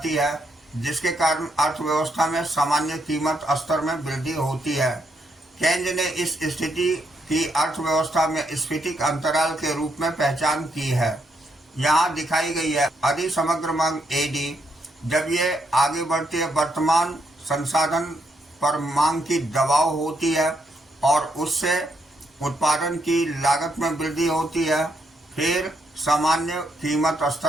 है जिसके कारण अर्थव्यवस्था में सामान्य कीमत स्तर में वृद्धि होती है। केंज ने इस स्थिति की अर्थव्यवस्था में स्फटिक अंतराल के रूप में पहचान की है। यहाँ दिखाई गई है अधिक समग्र मांग एडी जब ये आगे बढ़ती है वर्तमान संसाधन पर मांग की दबाव होती है और उससे उत्पादन की लागत में वृद्धि होती है, फिर सामान्य कीमत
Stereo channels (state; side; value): normal; both; correlation 0.77